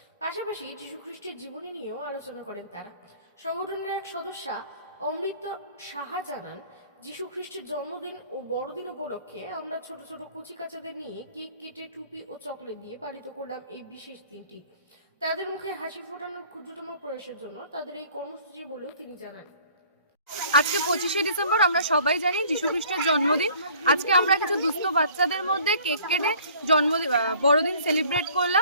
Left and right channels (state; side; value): inverted; both; correlation -0.53